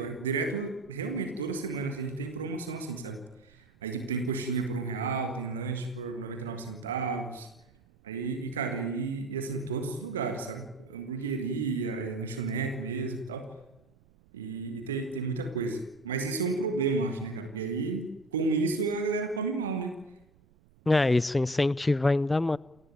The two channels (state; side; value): noise; right; rumble, 29 dB below the sound